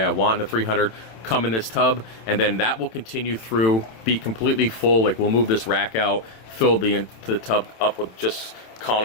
I want in the 300, come in this tub, and then that will continue through, be completely full. Like, we'll move this rack out, fill the tub up with just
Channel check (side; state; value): right; late; 27 ms